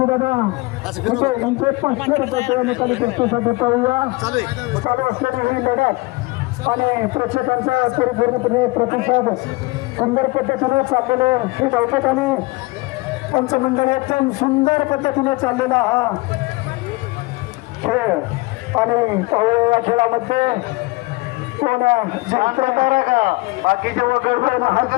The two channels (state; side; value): quieter; right; 23.7 dB